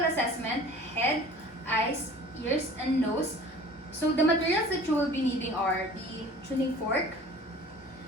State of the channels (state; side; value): normal; both; correlation 0.45